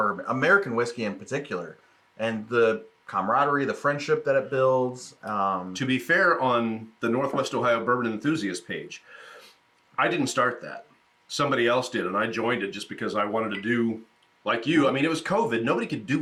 American whiskey in particular, and the camaraderie, the friendship that it builds. To be fair, on the Northwest Ohio Bourbon Enthusiast page, I didn't start that. Somebody else did, and I joined it just because I wanted to do like you. I mean, it was COVID. Nobody could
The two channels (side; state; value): both; identical; correlation 1.00